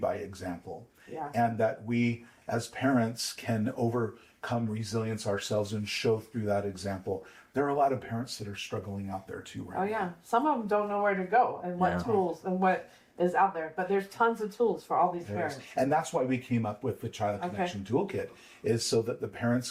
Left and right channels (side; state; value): both; identical; correlation 1.00